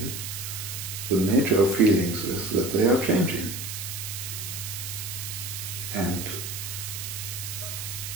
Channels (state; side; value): noise; right; hiss, 6 dB below the sound